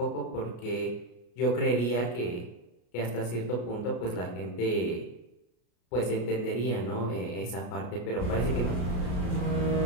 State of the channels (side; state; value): right; late; 33 ms